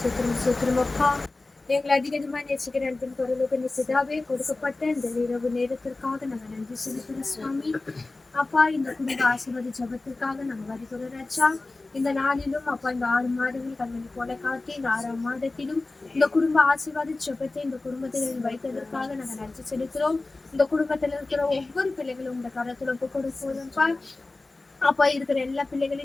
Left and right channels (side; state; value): right; quieter; 3.2 dB